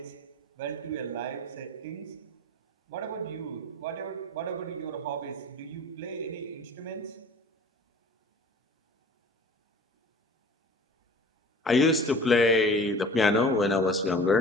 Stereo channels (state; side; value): normal; both; correlation 0.43